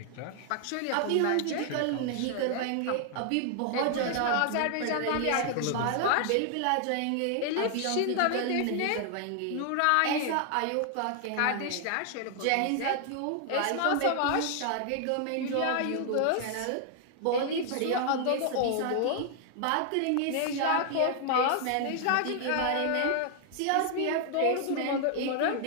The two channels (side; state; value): both; different; correlation 0.00